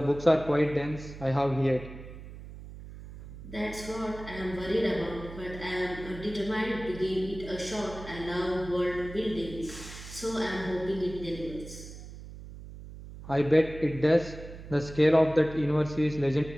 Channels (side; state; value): right; noise; hum, 14 dB below the sound